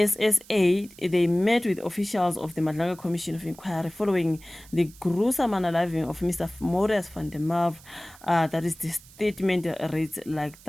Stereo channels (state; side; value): noise; right; hiss, 23 dB below the sound